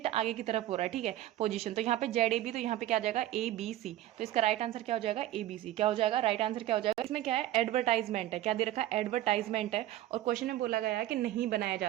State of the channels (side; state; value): left; quieter; 14.1 dB